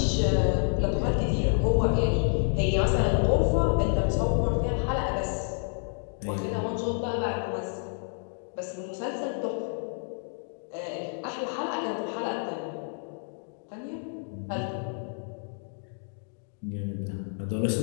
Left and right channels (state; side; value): silent; right; 59 dB below the other